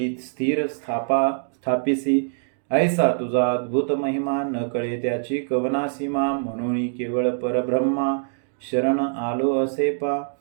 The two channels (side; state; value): left; silent; digital silence